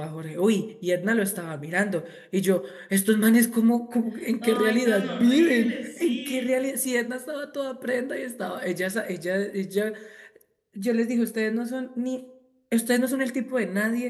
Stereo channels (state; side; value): identical; both; correlation 1.00